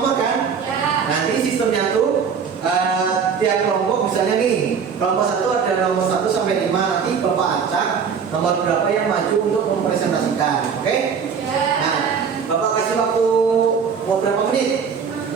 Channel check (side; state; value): left; quieter; 6.5 dB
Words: kan? Ya. Nanti sistemnya tuh tiap kelompok misalnya nih, kelompok 1 ada nomor 1 sampai 5, nanti Bapak acak nomor berapa yang maju untuk mempresentasikan. Oke? Ya. Nah, Bapak kasih waktu mau berapa menit?